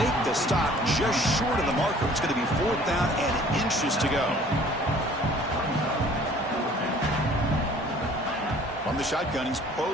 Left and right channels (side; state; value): both; normal; correlation 0.52